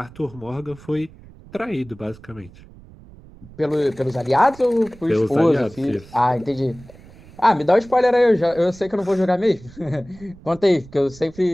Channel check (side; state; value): right; noise; rumble, 21 dB below the sound